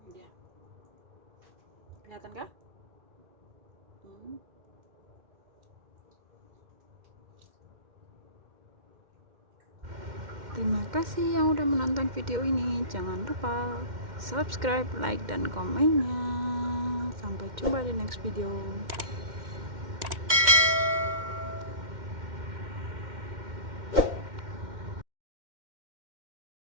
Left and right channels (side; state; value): left; late; 2.1 ms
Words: Dia. Kelihatan kah? Terima kasih yang udah menonton video ini. Jangan lupa subscribe, like, dan komennya. Sampai jumpa di next video.